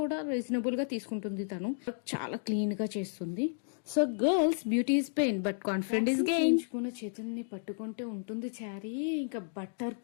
రీజనబుల్ గా తీసుకుంటుంది. తను చాలా క్లీన్ గా చేస్తుంది. So girls, beauty is pain but confident is gain. చేతుల్ని పట్టుకుంటే ఉంటుంది చారీ, ఇంకా బట్టర్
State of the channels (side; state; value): right; silent; digital silence